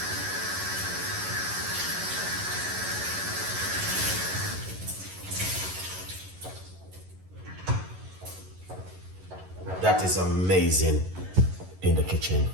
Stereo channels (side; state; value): left; late; 11 ms